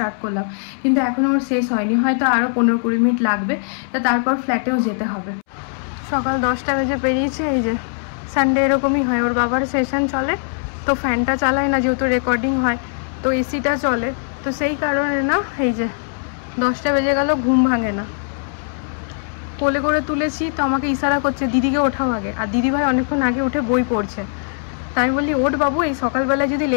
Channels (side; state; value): right; silent; 66 dB below the other